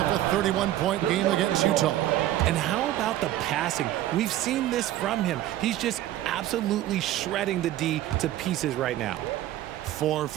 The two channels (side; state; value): left; quieter; 13.7 dB